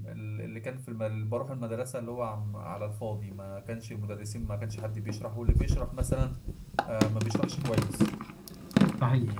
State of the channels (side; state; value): both; identical; correlation 1.00